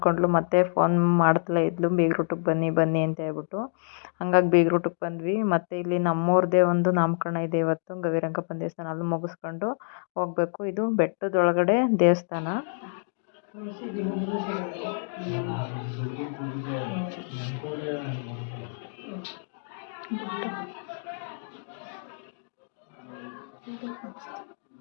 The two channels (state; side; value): silent; right; digital silence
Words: ಮತ್ತೆ ಫೋನ್ ಮಾಡ್ತಲೇ ಇದ್ಲು, ಬೇಗರೂಟಕ್ಕೆ ಬನ್ನಿ ಬನ್ನಿ ಅಂತ ಹೇಳ್ಬಿಟ್ಟು. ಹಂಗಾಗಿ ಬೇಗರೂಟಕ್ಕೆ ಬಂದ್ವಿ. ಮತ್ತು ಇಲ್ಲಿ ನಮ್ಮವ್ರದ್ದೇ ಒಂದು ನಾಮಕರಣ ಇದೆ ಇವತ್ತು, ಗವಿರಂಗಪ್ಪನ ದೇವಸ್ಥಾನ. ಅಲ್ಲಿ ಮುಗಿಸ್ಕೊಂಡು ಹೋಗಬೇಕು. ಇದು ಬೆಟ್ಟದೊಳಗಡೆ ದೇವಸ್ಥಾನ.